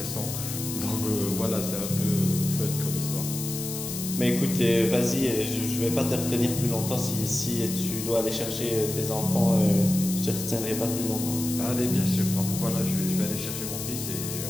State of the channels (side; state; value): left; noise; hiss, 6 dB below the sound